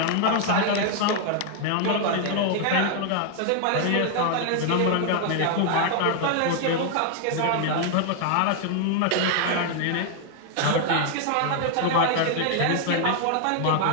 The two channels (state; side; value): different; both; correlation 0.00